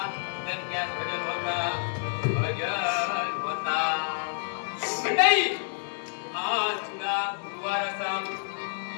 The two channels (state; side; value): silent; right; digital silence